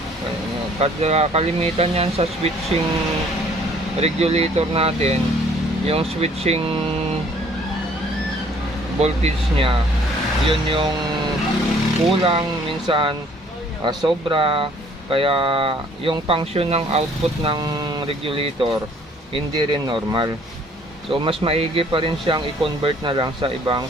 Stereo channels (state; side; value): normal; both; correlation 0.58